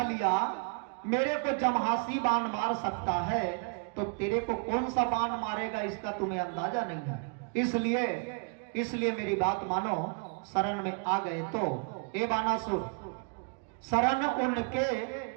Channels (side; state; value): left; quieter; 39.9 dB